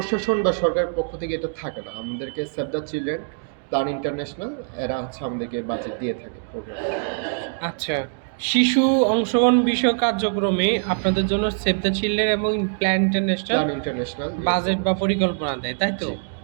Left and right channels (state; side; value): silent; left; digital silence